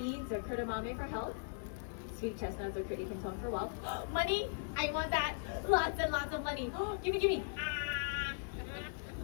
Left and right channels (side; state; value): right; silent; digital silence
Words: or kudamame for health. Sweet chestnuts or pretty canton for wealth. Money! I want that! Lots and lots of money! Gimme, gimme!